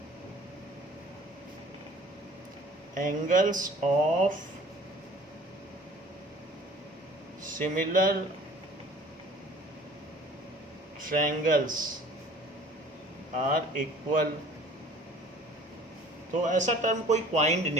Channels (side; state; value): both; normal; correlation 0.49